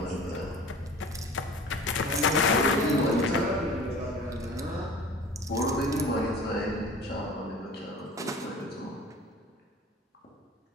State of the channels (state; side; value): normal; both; correlation 0.42